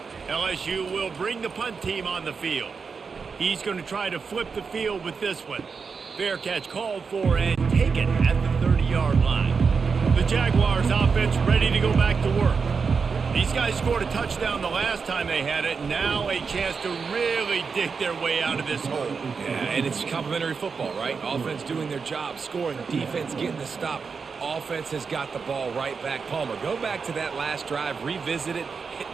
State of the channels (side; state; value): left; quieter; 5.3 dB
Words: LSU will bring the punt team on the field. He's going to try to flip the field with this one. Fair catch called for and taken at the 30-yard line. The Jaguars offense ready to go back to work. These guys scored a touchdown the last time they had it. Now a chance to really dig their way out of this hole. Yeah, and it's complimentary football, right? Offense doing their job, scoring, defense getting the stop. Offense has got the ball right back. Palmer, go back to that last drive, revisit it,